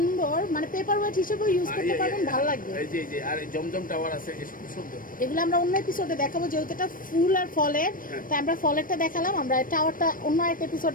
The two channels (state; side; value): late; right; 0.40 ms